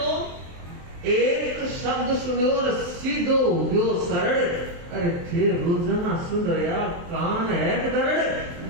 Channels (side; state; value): left; late; 23 ms